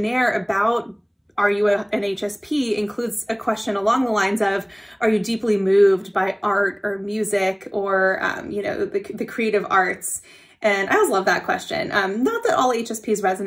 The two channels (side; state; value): both; identical; correlation 1.00